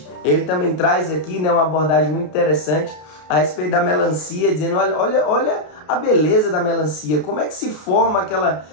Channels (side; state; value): right; late; 33 ms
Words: Ele também traz aqui, né, uma abordagem muito interessante a respeito da melancia, dizendo, olha a beleza da melancia, como é que se forma aquela